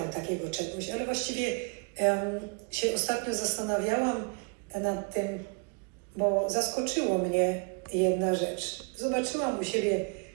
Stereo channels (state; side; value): quieter; left; 34.4 dB